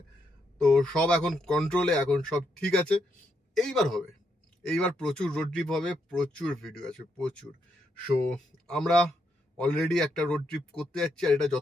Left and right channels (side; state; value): both; normal; correlation 0.79